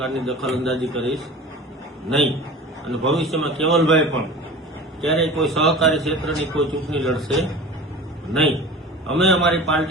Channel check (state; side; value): normal; both; correlation 0.37